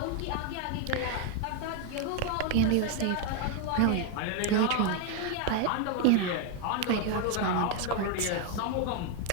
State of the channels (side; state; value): both; different; correlation 0.01